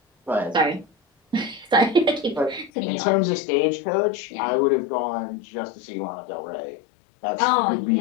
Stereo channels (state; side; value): drops out; right; at 2.7 s